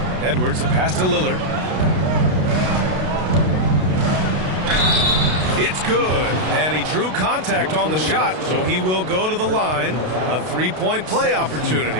Edwards, the pass to Lillard. It's good. And he drew contact on the shot, so he will go to the line. A three-point play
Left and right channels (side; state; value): left; late; 32 ms